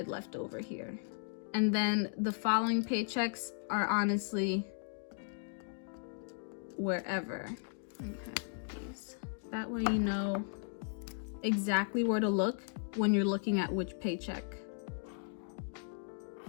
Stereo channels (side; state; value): right; silent; digital silence